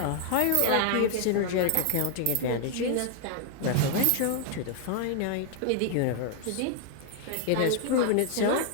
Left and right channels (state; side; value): different; both; correlation 0.00